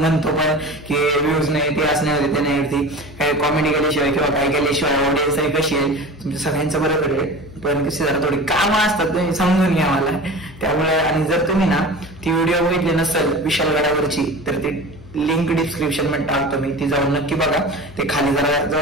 पण की व्ह्यूज नाही ते असं नाही होते ते नाही होती. काही कॉमेडी केल्याशिवाय किंवा काय केल्याशिवाय ऑडियन्स आहे कशी आहे तुमच्या सगळ्यांचं बरोबर आहे. पण कशी जरा थोडी कामं असतात तुम्ही समजून घ्या मला. त्यामुळे आणि जर तुम्ही ना ती व्हिडिओ बघितली नसेल विशालगडावरची तर ती लिंक डिस्क्रिप्शन मध्ये टाकतो मी. ती जाऊन नक्की बघा. ते खाली जरा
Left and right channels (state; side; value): noise; left; hum, 18 dB below the sound